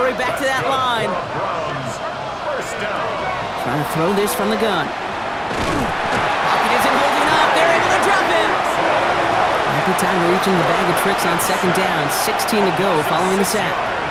back to that line. Browns first down. Trying to throw this from the gun. Pocket isn't holding up. They're able to drop him. Happy time reaching the bag of tricks on second down. 16 to go following the sack.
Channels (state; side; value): identical; both; correlation 1.00